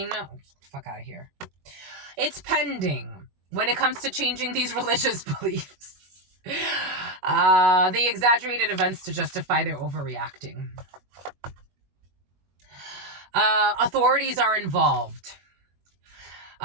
Oh, fuck out of here. It's pending when it comes to changing these religious beliefs. They exaggerated events to justify their overreacting. Authorities are involved.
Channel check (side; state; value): left; late; 22 ms